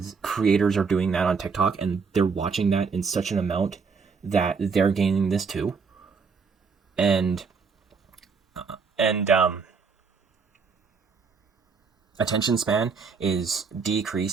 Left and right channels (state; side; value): quieter; left; 5.3 dB